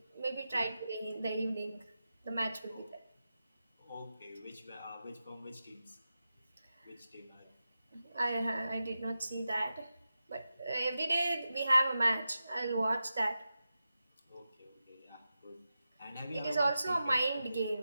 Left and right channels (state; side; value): inverted; both; correlation -0.92